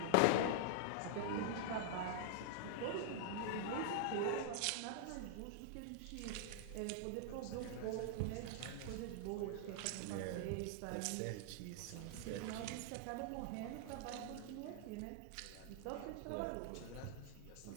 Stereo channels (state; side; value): different; both; correlation -0.01